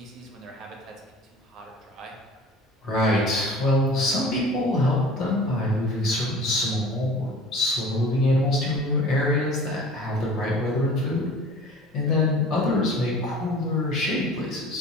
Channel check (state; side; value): normal; both; correlation 0.44